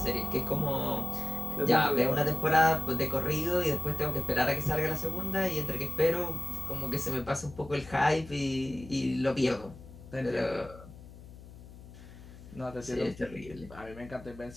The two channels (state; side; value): noise; left; hum, 18 dB below the sound